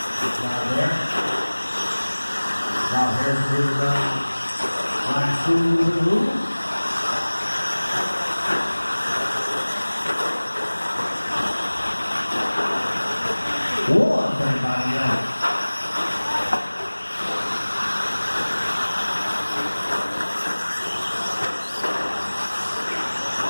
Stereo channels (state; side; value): inverted; both; correlation -1.00